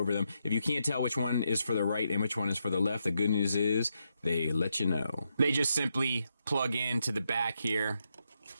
them. If you can't tell which one is for the right and which one is for the left, the good news is they let you know. They just simply plug into the back here.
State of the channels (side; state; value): both; inverted; correlation -0.82